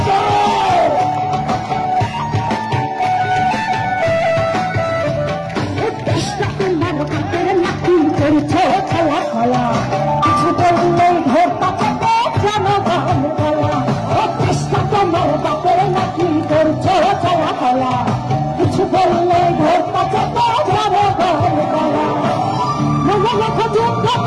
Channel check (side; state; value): both; identical; correlation 1.00